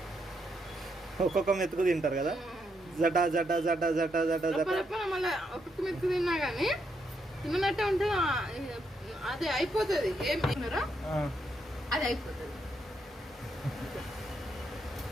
ఒక్కొక్క మెతుకు తింటారు కదా, జటా జటా జటా జటా జటా జటా. మళ్ళీ ఒక్కొక్క మెతుకు తిన్నా కానీ తిన్నట్టే ఉంటే అది అయిపోతుంది. ఏం తిన్నారా అది అయిపోతుంది.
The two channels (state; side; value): normal; both; correlation 0.78